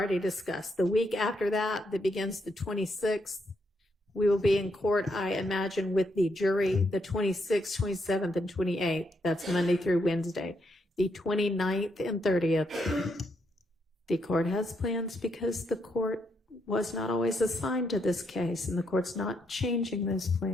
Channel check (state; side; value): normal; both; correlation 0.78